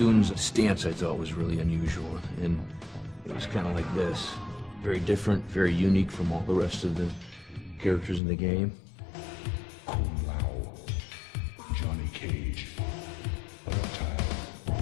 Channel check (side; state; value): right; drops out; at 8.2 s